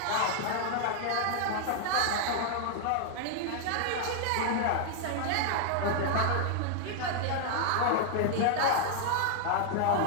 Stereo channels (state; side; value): different; both; correlation -0.01